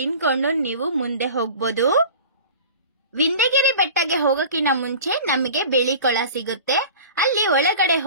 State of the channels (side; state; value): both; inverted; correlation -0.39